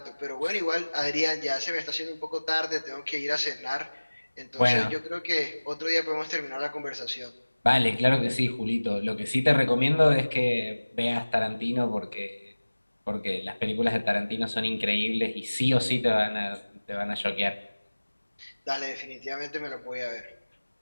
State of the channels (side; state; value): both; inverted; correlation -1.00